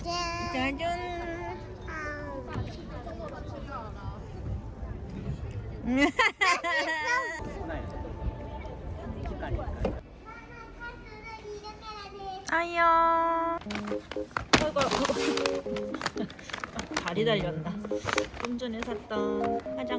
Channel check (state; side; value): identical; both; correlation 1.00